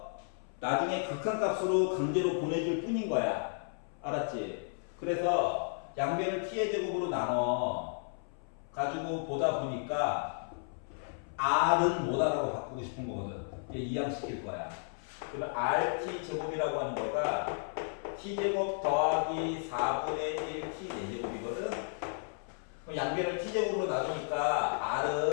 나중에 극한값으로 강제로 보내줄 뿐인 거야. 알았지? 그래서 양변을 T의 제곱으로 나눠 가지고 보다 보니까 R은 뭐다라고 바꾸고 싶은 거거든. 이항시킬 거야. 그러면 RT 제곱이라고 하는 거가 T제곱 더하기 4분의 1 T 4제곱이거든. 그럼 양변을 T제곱으로 나누니까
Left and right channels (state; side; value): silent; right; 55 dB below the other